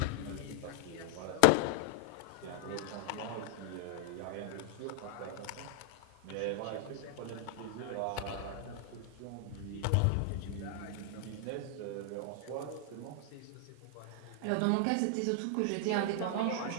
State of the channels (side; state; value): both; different; correlation 0.00